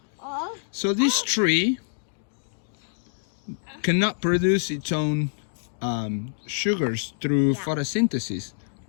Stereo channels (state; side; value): silent; right; digital silence